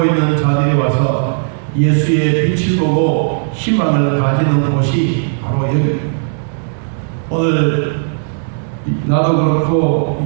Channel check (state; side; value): silent; left; digital silence